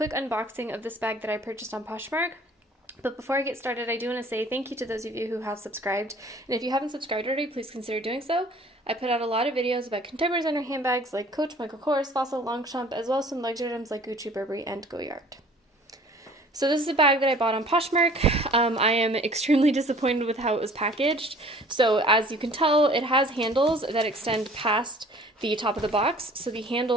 unboxing of this bag that I purchased on Poshmark. But before I get started, I do want to say thank you to those of you who have subscribed. And if you haven't subscribed already, please consider doing so. I put out a lot of videos about contemporary designer handbags like Coach, Michael Kors, Fossil, Longchamp, as well as some luxury items like Gucci, Burberry, and Goyard. So this is a bag that I bought on Poshmark. I am extremely disappointed with how it was packaged. So as you can tell, it has handles that extend past the top of the box. So the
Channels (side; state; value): both; normal; correlation 0.51